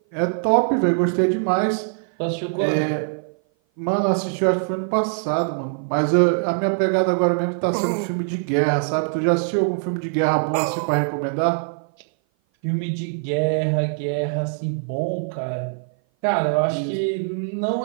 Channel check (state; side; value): silent; left; 57 dB below the other